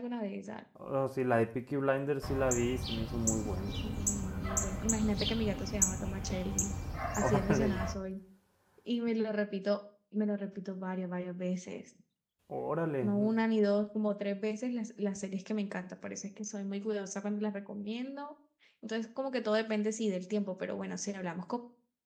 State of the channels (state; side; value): identical; both; correlation 1.00